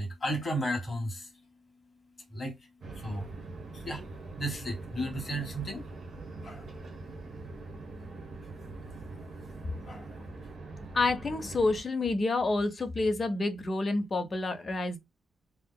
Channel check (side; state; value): both; normal; correlation 0.86